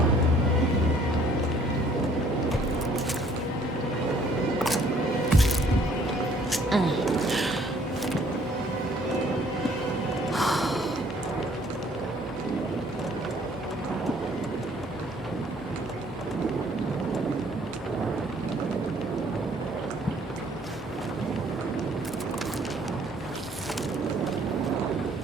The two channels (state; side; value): normal; both; correlation 0.60